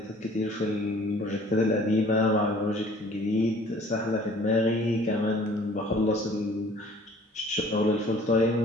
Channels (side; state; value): both; normal; correlation 0.53